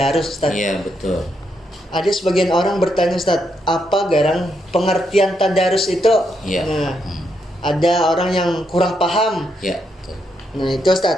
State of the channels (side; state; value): both; normal; correlation 0.79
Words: Ustadz. Iya, betul. Ada sebagian orang bertanya Ustadz, apa garang pengertian tadarus itu? Iya. Nah, ada orang yang kurang paham. Ya, betul. Nah, itu